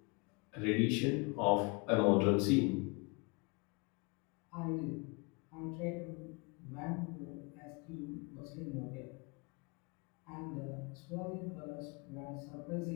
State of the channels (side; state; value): right; quieter; 30.1 dB